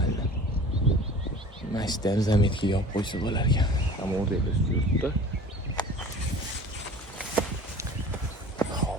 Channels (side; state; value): both; normal; correlation 0.43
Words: Mashtam zametga yopib qo'ysa bo'lar ekan. Ham o'rtada yuribdi.